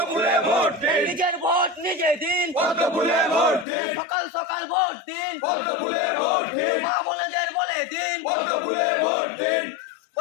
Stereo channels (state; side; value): drops out; right; at 3.7 s